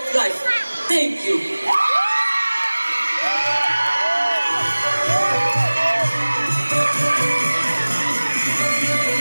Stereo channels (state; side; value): inverted; both; correlation -1.00